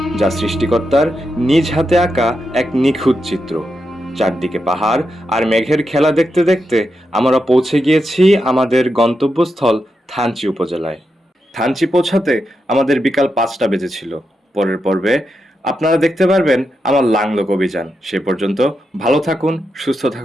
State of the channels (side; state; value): both; normal; correlation 0.86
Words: যা সৃষ্টিকর্তার নিজ হাতে আঁকা এক নিখুঁত চিত্র। চারদিকে পাহাড় আর মেঘের খেলা দেখতে দেখতে আমরা পৌঁছে গিয়েছি আমাদের গন্তব্যস্থল থানচি উপজেলায়। থানচি পৌঁছাতে আমাদের বিকাল 5টা বেজেছিল। পরের পর্বে আপনারা দেখতে পারবেন আমার লাংলোক অভিযান। সে পর্যন্ত ভালো থাকুন, সুস্থ